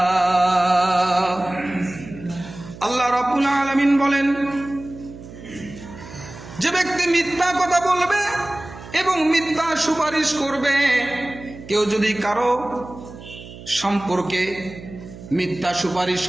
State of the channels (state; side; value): noise; right; hum, 16 dB below the sound